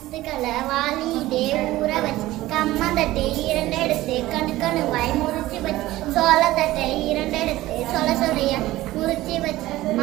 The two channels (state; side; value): quieter; left; 16.7 dB